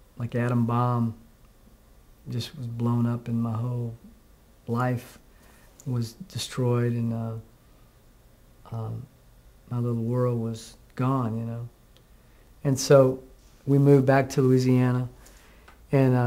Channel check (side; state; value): both; identical; correlation 1.00